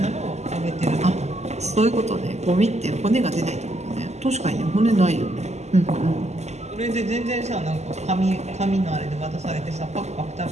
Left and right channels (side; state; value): left; late; 0.33 ms